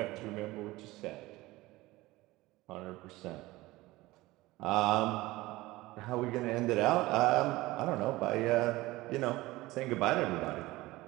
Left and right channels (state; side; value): quieter; left; 19.2 dB